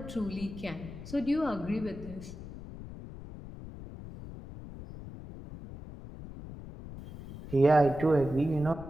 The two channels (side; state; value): left; noise; rumble, 13 dB below the sound